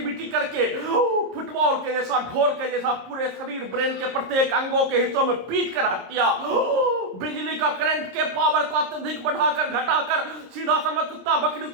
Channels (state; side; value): late; left; 26 ms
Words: करके फुटबॉल के जैसा, ढोल के जैसा पूरे शरीर, ब्रेन के प्रत्येक अंगों के हिस्सों में पीट कर हत्या, बिजली का करंट के पावर को अत्यधिक बढ़ाकर घटाकर सीधा समझ कुत्ता बकरी